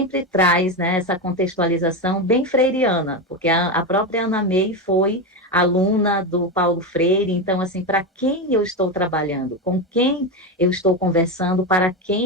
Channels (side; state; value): both; normal; correlation 0.14